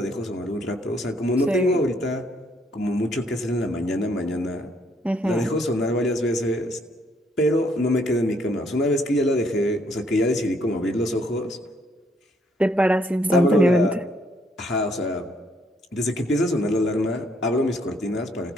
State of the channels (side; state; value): both; normal; correlation 0.69